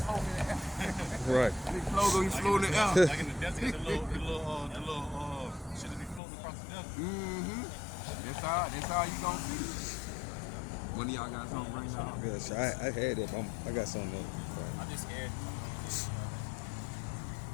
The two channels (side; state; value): right; drops out; at 6.2 s